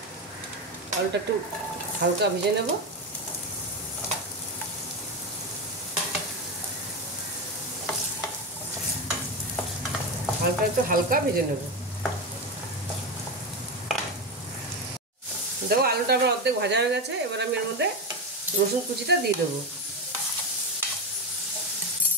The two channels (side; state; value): both; normal; correlation 0.14